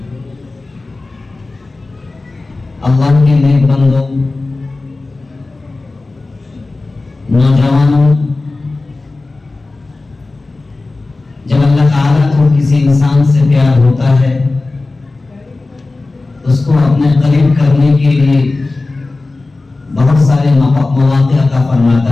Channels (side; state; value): right; quieter; 3.3 dB